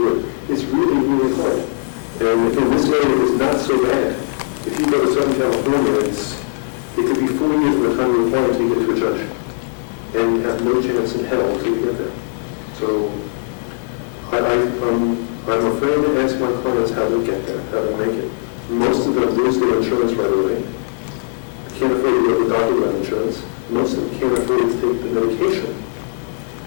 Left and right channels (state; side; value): silent; right; digital silence